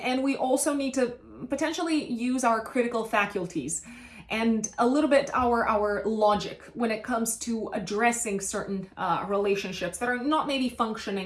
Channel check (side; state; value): both; identical; correlation 1.00